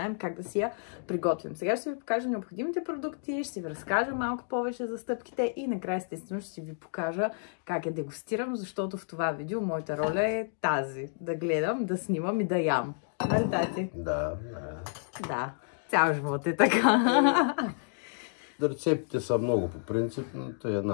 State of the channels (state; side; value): silent; right; digital silence